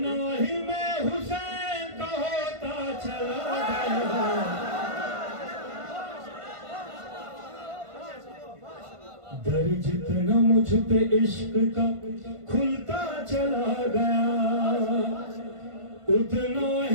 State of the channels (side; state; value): left; late; 1.5 ms